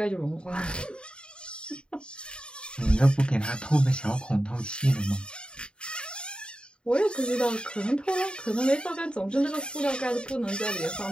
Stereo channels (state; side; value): late; right; 0.052 ms